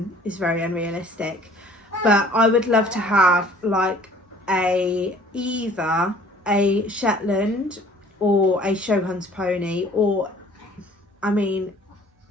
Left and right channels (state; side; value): normal; both; correlation 0.52